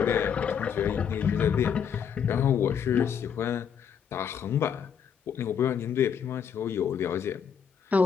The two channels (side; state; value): right; quieter; 7.6 dB